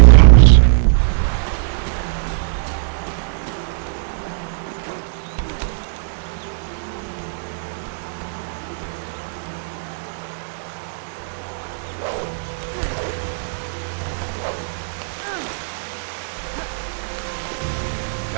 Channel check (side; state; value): left; silent; digital silence